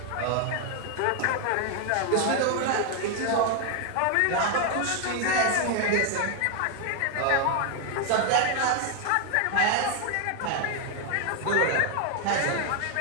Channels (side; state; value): both; different; correlation 0.01